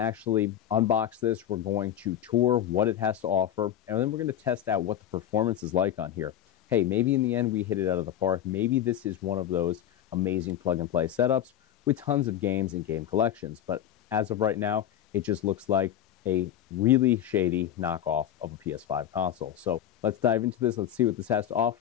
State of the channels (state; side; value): quieter; right; 10.9 dB